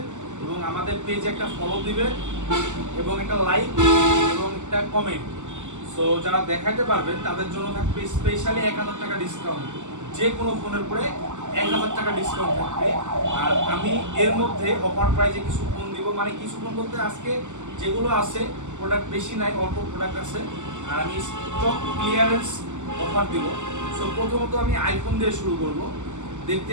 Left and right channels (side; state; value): left; late; 0.84 ms